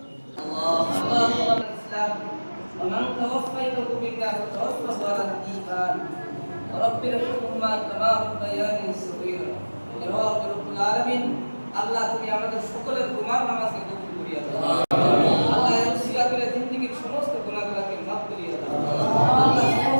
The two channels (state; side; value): inverted; both; correlation -1.00